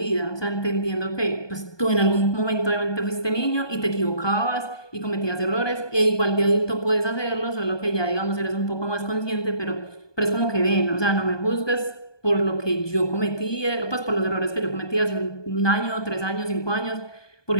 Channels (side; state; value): right; late; 1.2 ms